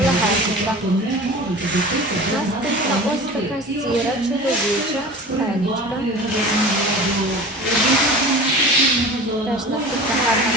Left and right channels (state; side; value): normal; both; correlation 0.36